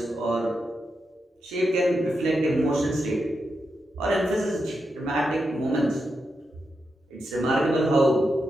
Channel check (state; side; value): normal; both; correlation 0.86